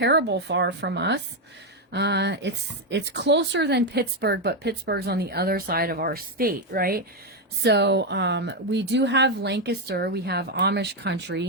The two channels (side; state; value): both; normal; correlation 0.05